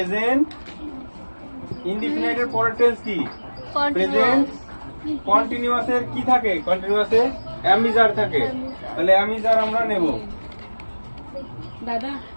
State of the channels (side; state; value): both; inverted; correlation -1.00